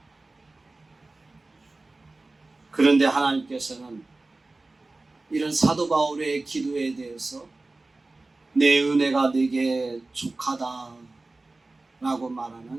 그런데 하나님께서는 이런 사도 바울의 기도에 대해서 내 은혜가 내게 족하다 라고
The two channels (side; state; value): left; quieter; 3.2 dB